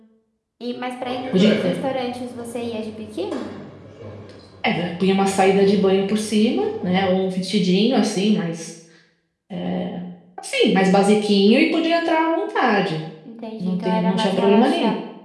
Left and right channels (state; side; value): identical; both; correlation 1.00